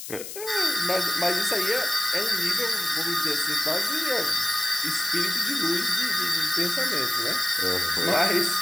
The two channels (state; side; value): noise; left; hiss, 10 dB below the sound